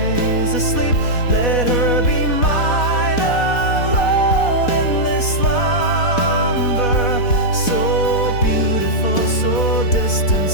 asleep, let her be mine alone in this slumber. So beautiful, so distant,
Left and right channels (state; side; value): late; right; 4.1 ms